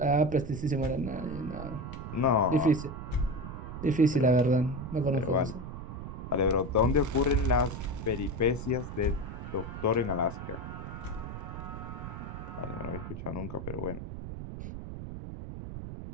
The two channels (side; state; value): right; noise; rumble, 8 dB below the sound